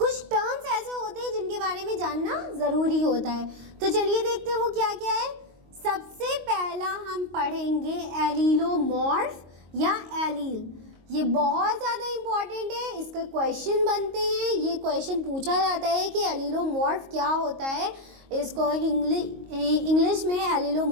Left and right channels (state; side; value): late; left; 22 ms